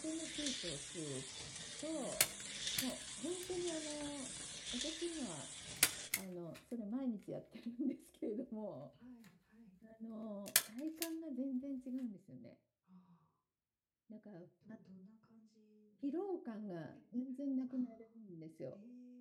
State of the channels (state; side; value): identical; both; correlation 1.00